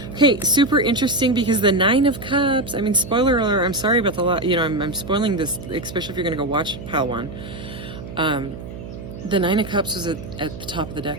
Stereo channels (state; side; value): noise; right; hum, 11 dB below the sound